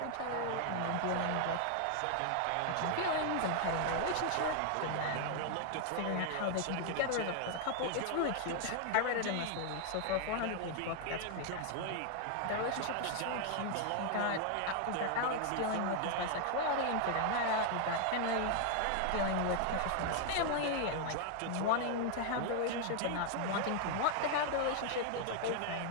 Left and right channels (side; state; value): both; different; correlation 0.00